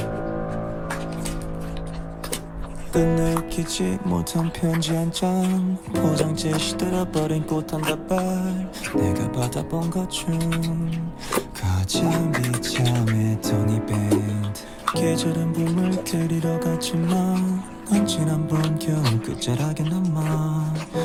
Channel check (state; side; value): identical; both; correlation 1.00